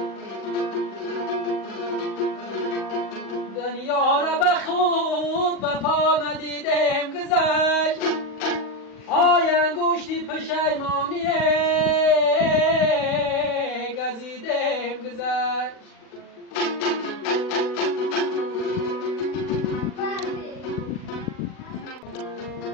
دنیا را به خود وفا ندیدم گذشت های انگشتی پشیمانی گزیدم گذشت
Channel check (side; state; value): right; late; 40 ms